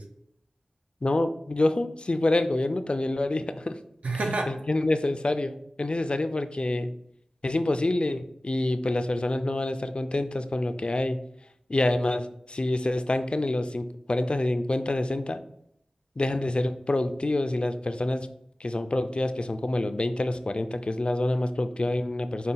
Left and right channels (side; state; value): both; normal; correlation 0.97